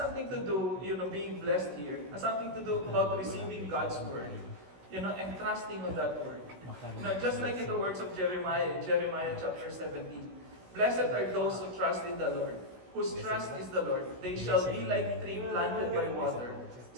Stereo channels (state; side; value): late; left; 16 ms